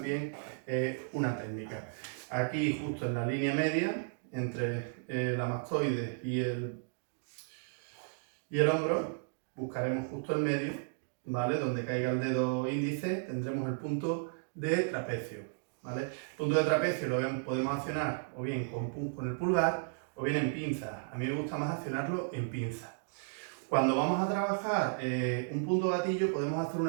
una técnica. Aquí, justo en la línea media, entre la mastoide y el hombro, buscaremos justo el medio, ¿vale? Donde caiga el dedo índice, tendremos el punto de trapecio, ¿vale? El punto de trapecio lo podemos accionar o bien con el pulgar o bien en pinza. A mí me gusta más accionarlo en pinza. Cuando vamos a trabajar un punto gatillo, podemos hacer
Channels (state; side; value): silent; left; digital silence